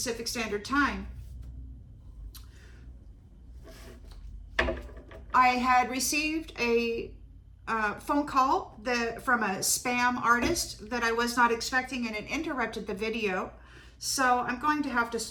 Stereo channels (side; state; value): both; identical; correlation 1.00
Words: Standard Time. I had received a phone call from a spam artist that I was not expecting, and it interrupted the video. So I'm going to have to